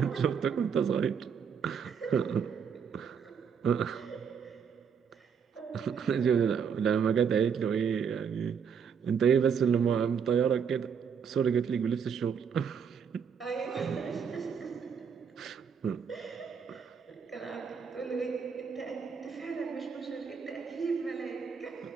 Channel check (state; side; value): quieter; left; 6.8 dB